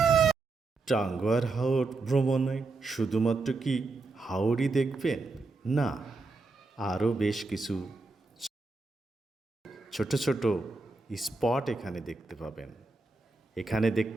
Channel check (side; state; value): left; quieter; 3.6 dB